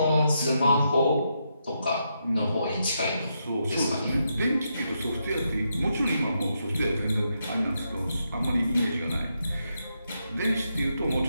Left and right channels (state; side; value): inverted; both; correlation -0.82